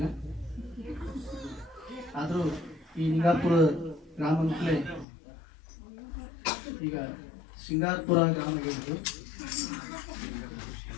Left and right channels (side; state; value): right; drops out; at 5.1 s